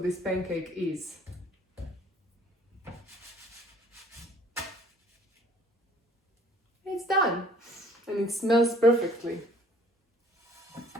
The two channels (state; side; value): normal; both; correlation 0.56